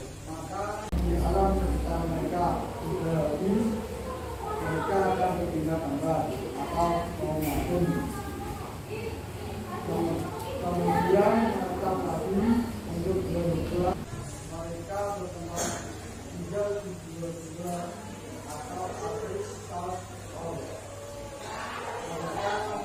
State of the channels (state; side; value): identical; both; correlation 1.00